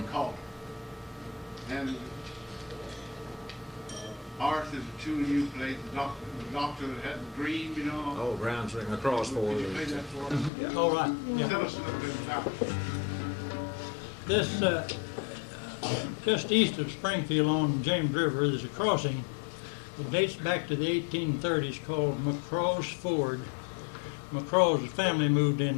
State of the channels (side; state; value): right; drops out; at 10.5 s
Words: calling. And Art is a tune you played, the doctor that had the dream, you know. Oh, Brown's ring across for Could you play that for us? Yeah. All right. Yeah. Tell us a little bit about it. This, just east of Springfield on James River, there's a crossing. It dates back to the 1830s called McCraw's Ford. McCraw's family moved